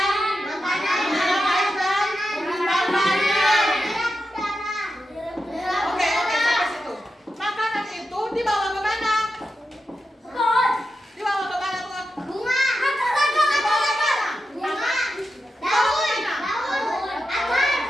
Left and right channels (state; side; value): normal; both; correlation 0.89